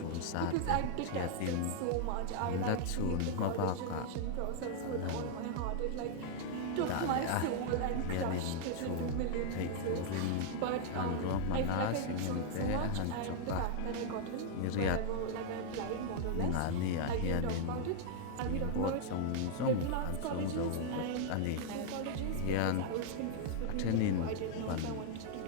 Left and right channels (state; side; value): different; both; correlation 0.00